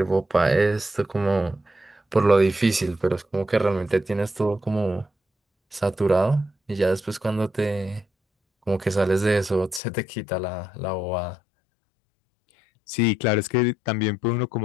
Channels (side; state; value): right; drops out; at 9.8 s